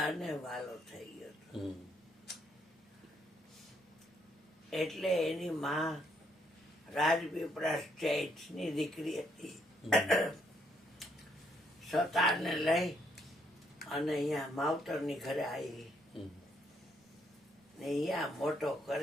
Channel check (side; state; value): both; normal; correlation 0.72